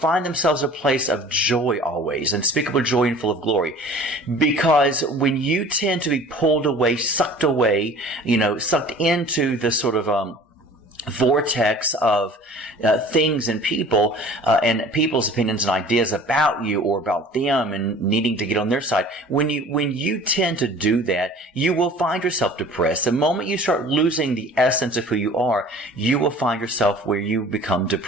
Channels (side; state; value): both; normal; correlation 0.46